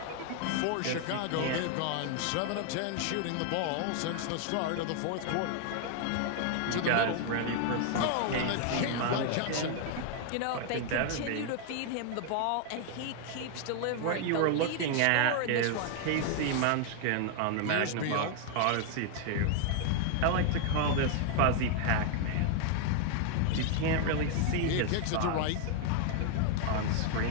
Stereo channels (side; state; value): both; different; correlation 0.00